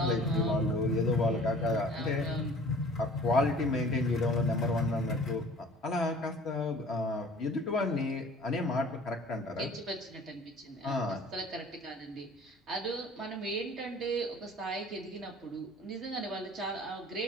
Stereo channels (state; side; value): normal; both; correlation 0.48